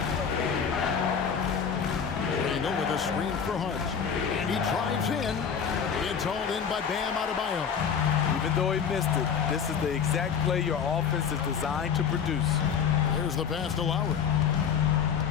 Randle with a screen for Hart. And he drives in. It's hauled in by Bam Adebayo. Even though he missed it, this is the exact play your offense is designed to produce. Here's the pass to Lowry.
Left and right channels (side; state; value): right; quieter; 7.1 dB